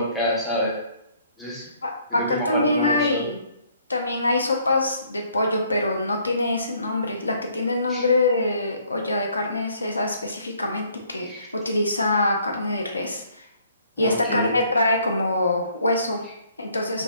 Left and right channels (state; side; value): inverted; both; correlation -0.63